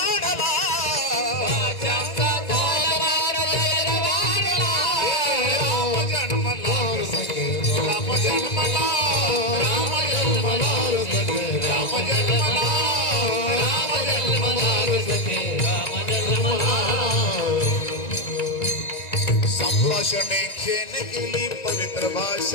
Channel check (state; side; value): late; right; 1.9 ms